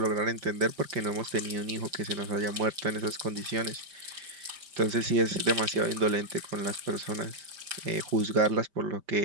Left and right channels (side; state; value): left; late; 5.1 ms